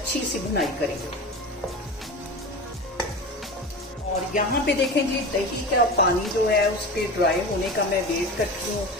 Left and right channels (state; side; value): normal; both; correlation 0.29